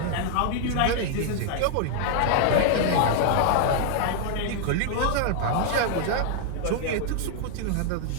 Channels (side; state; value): both; different; correlation 0.00